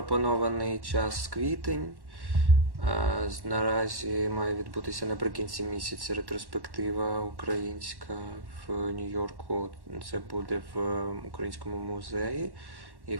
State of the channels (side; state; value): left; late; 1.1 ms